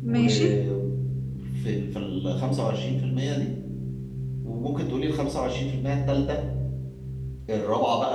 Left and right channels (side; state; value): both; identical; correlation 1.00